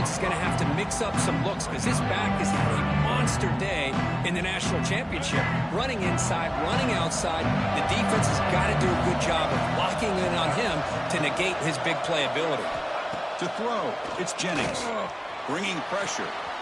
is going to have to mix up some looks because this back has had a monster day in the national championship. Running inside, running outside. The defense has got to do a good job of locking in on him to negate his big play ability. To throw, it's Jennings. Bringing pressure.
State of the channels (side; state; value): both; identical; correlation 1.00